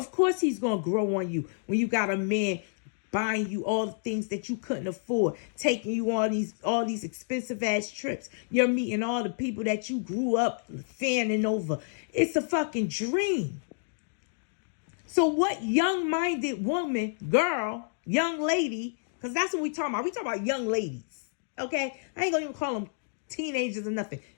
course he's gonna grow on you when you got a man buying you all the things that you couldn't afford, taking you on all these expensive ass trips. You're meeting all the people that you grew up fanning over. It's a fucking dream. So what young-minded woman, girl, young lady, because that's what we talking about. We talking about young ladies, okay? I ain't gonna even call them teenagers or nothing.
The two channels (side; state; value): right; silent; digital silence